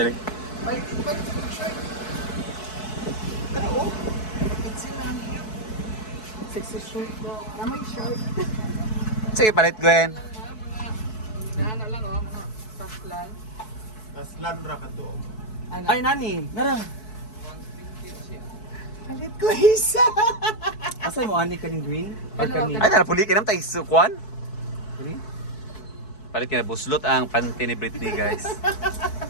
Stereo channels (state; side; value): late; right; 4.6 ms